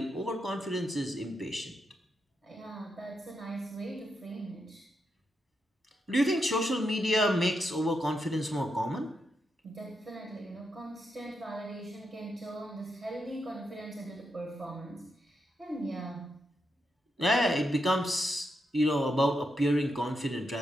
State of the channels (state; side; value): normal; both; correlation 0.83